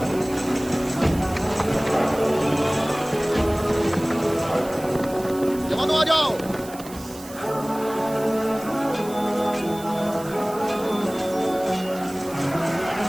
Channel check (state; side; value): noise; right; hiss, 17 dB below the sound